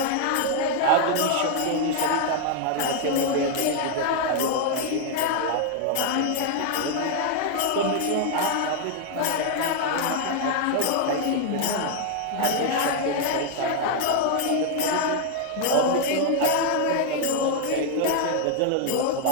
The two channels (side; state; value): both; different; correlation 0.00